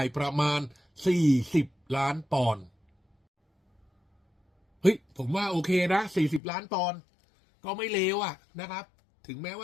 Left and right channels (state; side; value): drops out; right; at 6.4 s